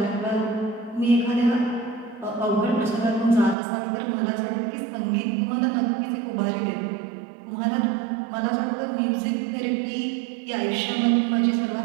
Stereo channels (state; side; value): drops out; left; at 3.6 s